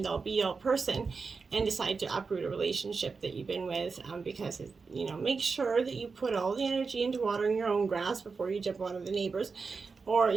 all be all person, and decide to uproot a relationship that you've been with, because you know, make sure that you put all the energy into watering your own grass before you jump on the neighbors. Or,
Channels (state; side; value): quieter; left; 4.8 dB